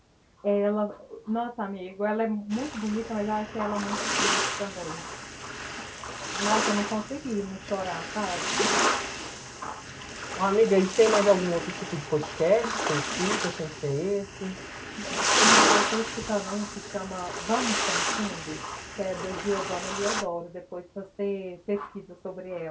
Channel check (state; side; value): identical; both; correlation 1.00